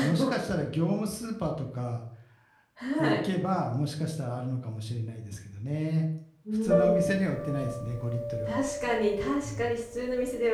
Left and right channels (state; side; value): identical; both; correlation 1.00